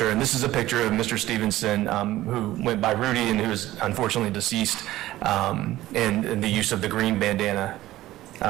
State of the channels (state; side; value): quieter; left; 15.7 dB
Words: and this is a picture of Mr. Stevenson, who went by Rudy and who is unfortunately deceased, and the use of the green bandana